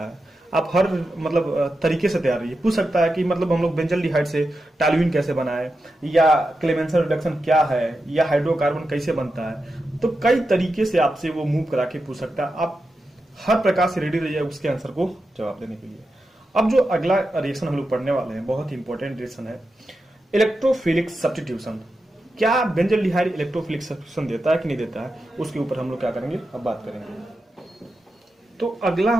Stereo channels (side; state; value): both; normal; correlation 0.89